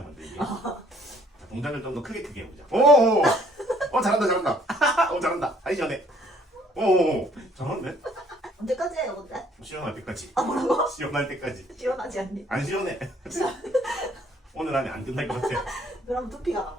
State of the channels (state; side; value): normal; both; correlation 0.62